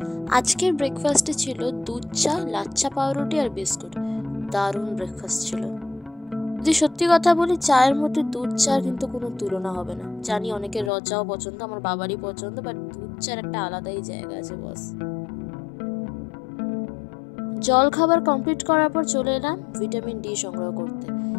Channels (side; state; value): right; drops out; at 10.9 s